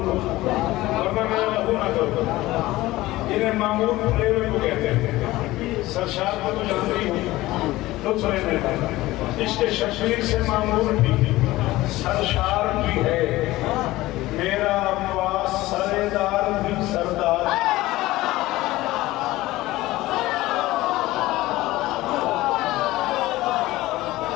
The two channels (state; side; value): quieter; right; 17.8 dB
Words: वरना मैं लहू ना करूँ। इन्हें मामूर प्रेम को कहते हैं, सरशार को तो जानती हूँ तो सुने। इसके शबीर से मामूर भी सरशार भी है, मेरा अब्बास सरेदार भी सरदार।